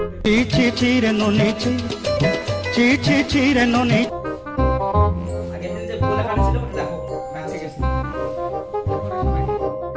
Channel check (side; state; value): both; identical; correlation 1.00